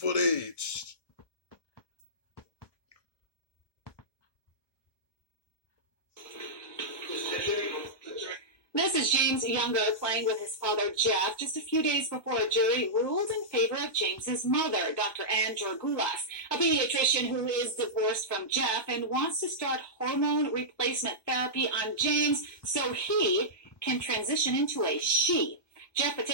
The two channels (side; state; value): right; late; 1.2 ms